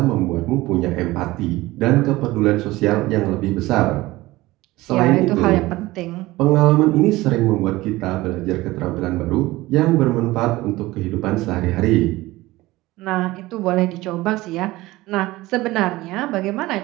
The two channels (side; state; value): left; quieter; 18.9 dB